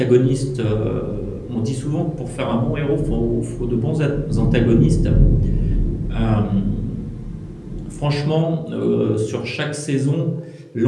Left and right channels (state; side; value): identical; both; correlation 1.00